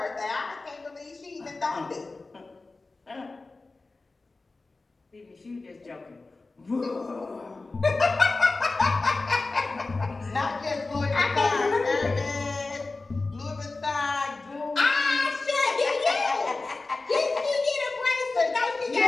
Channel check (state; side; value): quieter; right; 3.5 dB